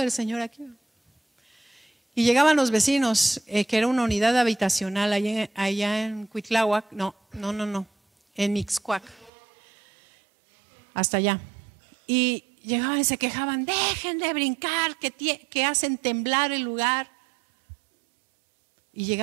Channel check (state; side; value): drops out; left; at 9.3 s